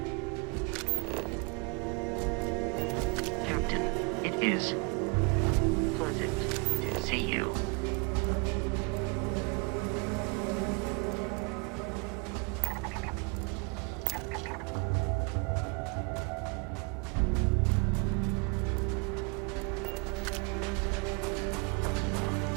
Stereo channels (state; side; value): quieter; left; 31.7 dB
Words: Captain, it is pleasant to see you.